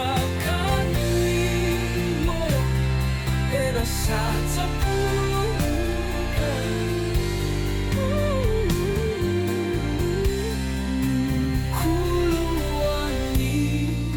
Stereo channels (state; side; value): identical; both; correlation 1.00